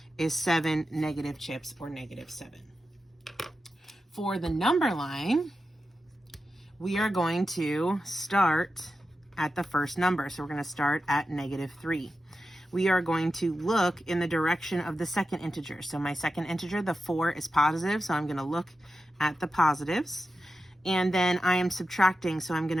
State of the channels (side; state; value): both; normal; correlation 0.91